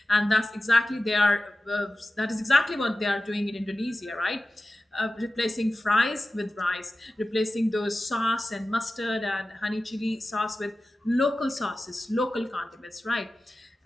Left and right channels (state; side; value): normal; both; correlation 0.95